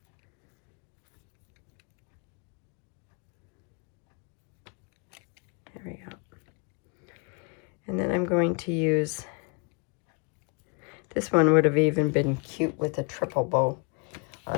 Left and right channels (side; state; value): right; quieter; 35.4 dB